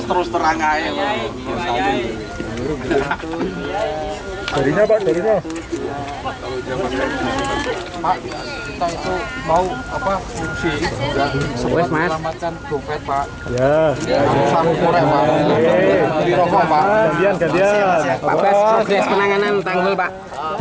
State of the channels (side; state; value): both; identical; correlation 1.00